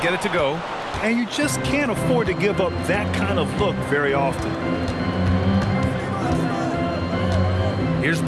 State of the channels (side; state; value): both; identical; correlation 1.00